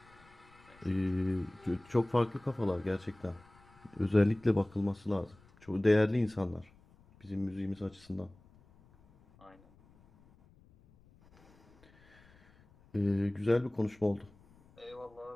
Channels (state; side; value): noise; left; rumble, 28 dB below the sound